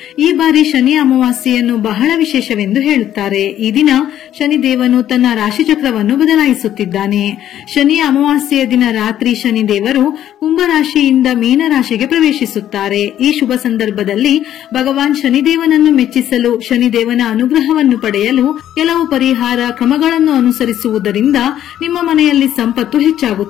ಈ ಬಾರಿ ಶನಿ ಅಮಾವಾಸ್ಯೆಯನ್ನು ಬಹಳ ವಿಶೇಷವೆಂದು ಹೇಳುತ್ತಾರೆ. ಈ ದಿನ ಶನಿದೇವನು ತನ್ನ ರಾಶಿಚಕ್ರವನ್ನು ಬದಲಾಯಿಸುತ್ತಿದ್ದಾನೆ. ಶನಿ ಅಮಾವಾಸ್ಯೆಯ ದಿನ ರಾತ್ರಿ ಶನಿದೇವರು ಕುಂಭರಾಶಿಯಿಂದ ಮೀನರಾಶಿಗೆ ಪ್ರವೇಶಿಸುತ್ತಾರೆ. ಈ ಶುಭ ಸಂದರ್ಭದಲ್ಲಿ ಭಗವಾನ್ ಶನಿದೇವನನ್ನು ಮೆಚ್ಚಿಸಲು, ಶನಿದೇವನ ಅನುಗ್ರಹವನ್ನು ಪಡೆಯಲು ಕೆಲವು ಪರಿಹಾರ ಕ್ರಮಗಳನ್ನು ಅನುಸರಿಸುವುದರಿಂದ ನಿಮ್ಮ ಮನೆಯಲ್ಲಿ ಸಂಪತ್ತು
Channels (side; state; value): right; quieter; 11.4 dB